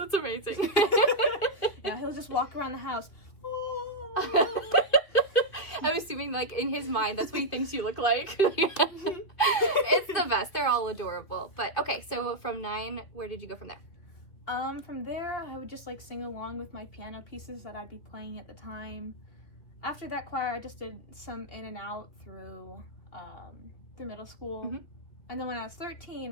amazing. Yeah, he'll just walk around the house. I'm assuming, like, in his mind, that's what he thinks you look like. It's the best. They're all adorable. But, okay, so from 9, where did you go from there? From there, I would just, like, sing along with my piano pieces that I'd be playing at the time. After that choir, I just did some in and out through middle school. And then when I was 13,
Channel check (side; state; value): right; late; 2.5 ms